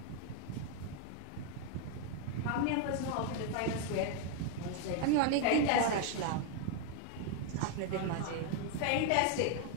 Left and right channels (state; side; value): different; both; correlation 0.00